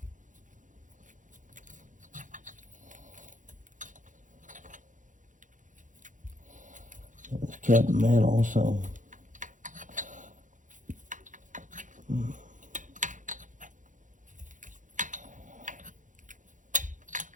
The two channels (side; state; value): left; late; 0.37 ms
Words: It's cut metal, so